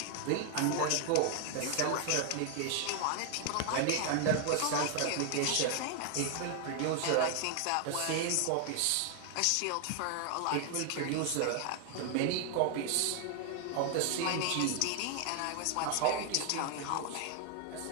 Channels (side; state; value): both; different; correlation 0.00